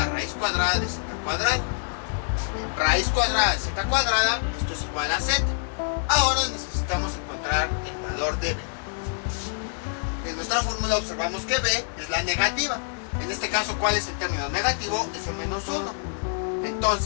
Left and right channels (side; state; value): right; silent; 61 dB below the other